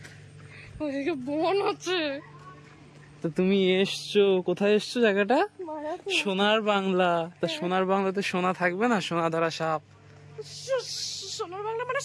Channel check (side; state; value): both; identical; correlation 1.00